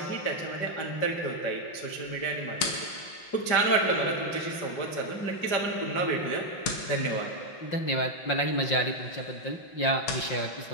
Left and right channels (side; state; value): right; late; 5.7 ms